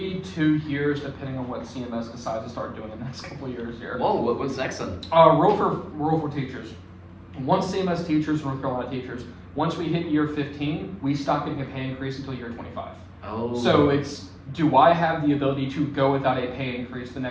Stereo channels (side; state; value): both; identical; correlation 1.00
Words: 2 years, depending on what CMS decides to start doing in the next couple of years here. Whoa, what's next then? Rule for teachers. Once CMS teachers, North Carolina teachers, once we hit year 15, we stop getting a pay increase until year 25. Oh. So it's, do I have the ability to go without a pay increase the